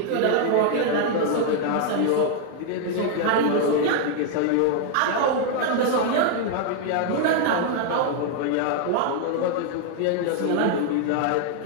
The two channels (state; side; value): different; both; correlation 0.00